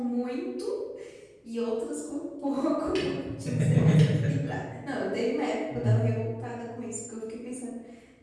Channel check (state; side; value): identical; both; correlation 1.00